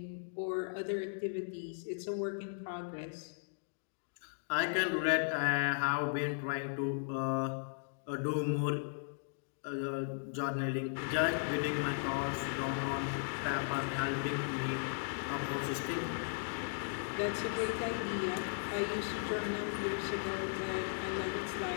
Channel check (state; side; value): silent; right; digital silence